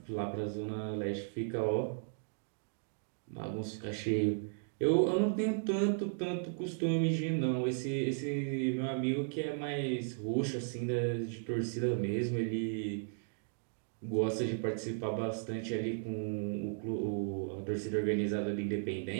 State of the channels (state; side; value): silent; left; digital silence